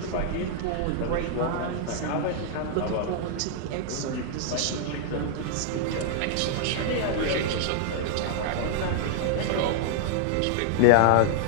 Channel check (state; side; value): different; both; correlation -0.01